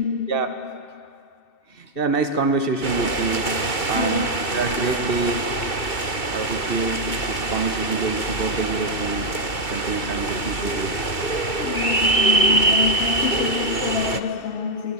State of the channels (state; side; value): late; right; 2.2 ms